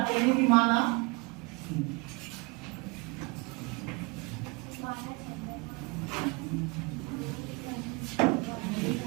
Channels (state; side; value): quieter; left; 27.7 dB